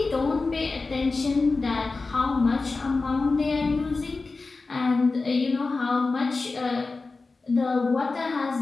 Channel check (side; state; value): right; quieter; 3.8 dB